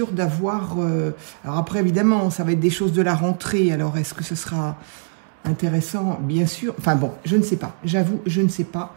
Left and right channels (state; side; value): silent; left; 64 dB below the other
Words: d'avoir... Alors après, évidemment, ça va être des choses de la rentrée. Alors, est-ce que ce sera intéressant? Bien sûr. Enfin bon, je ne sais pas. J'avoue, je ne sais pas.